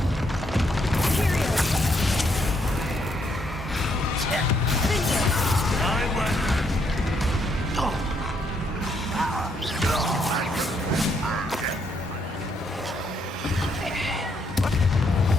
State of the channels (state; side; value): normal; both; correlation 0.73